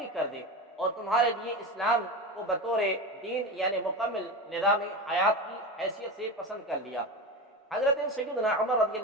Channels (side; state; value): both; normal; correlation 0.23